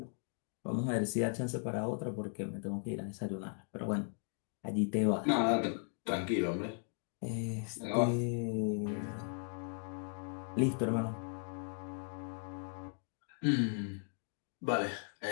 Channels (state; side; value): silent; right; 53 dB below the other